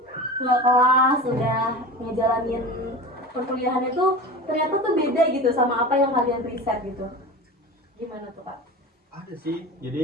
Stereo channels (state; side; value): normal; both; correlation 0.31